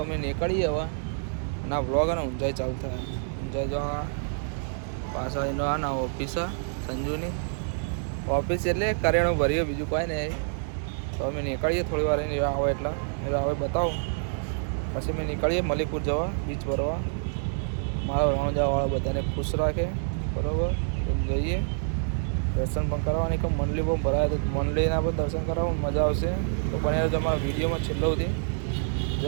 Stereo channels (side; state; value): left; silent; digital silence